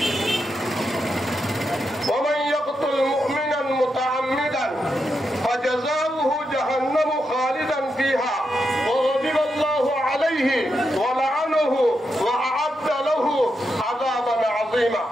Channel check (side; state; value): both; normal; correlation 0.85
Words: ওমান ইয়াকতুল মুমিনান মুতাআম্মিদান ফাজাযাউহু জাহান্নামু খালিদান ফিহা ওয়া গাদিবাল্লাহু আলাইহি ওয়া লা'নাহু ওয়া আ'আদ্দা লাহু আযাবান আযীমা।